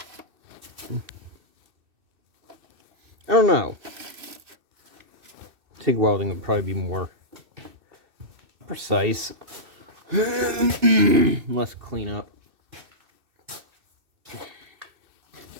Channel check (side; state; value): left; late; 2.6 ms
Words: I don't know. TIG welding would probably be more precise. Less cleanup.